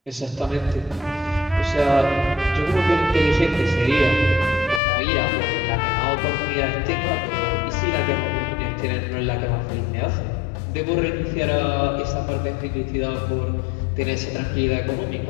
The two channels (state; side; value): drops out; right; at 4.8 s